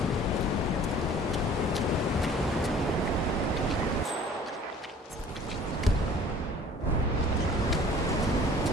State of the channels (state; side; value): normal; both; correlation 0.49